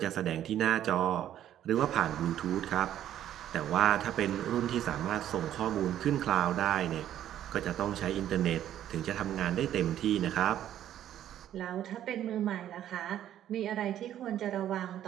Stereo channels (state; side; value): quieter; left; 11.4 dB